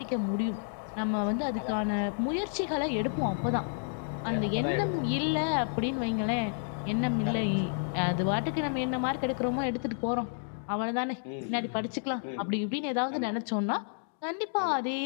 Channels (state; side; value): silent; right; digital silence